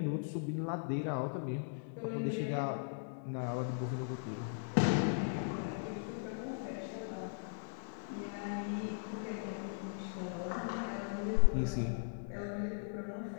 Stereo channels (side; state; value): right; silent; digital silence